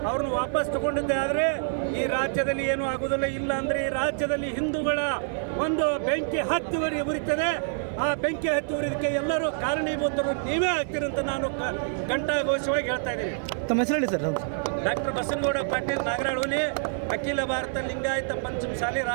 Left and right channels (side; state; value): left; silent; digital silence